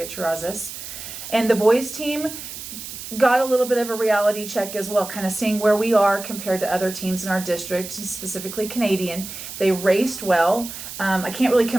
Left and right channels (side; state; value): right; noise; hiss, 10 dB below the sound